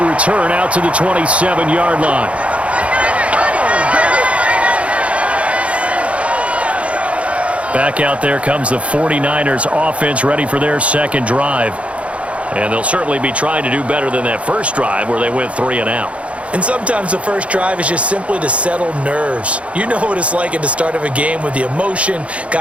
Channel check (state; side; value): late; left; 0.063 ms